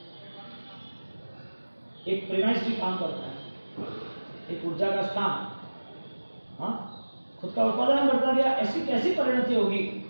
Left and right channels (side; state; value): both; inverted; correlation -1.00